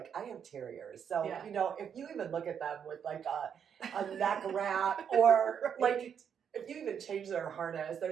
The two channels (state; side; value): quieter; left; 7.8 dB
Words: I have terriers. So, you know, if you even look at them with like a neck wrap or like if you even change their harness, they're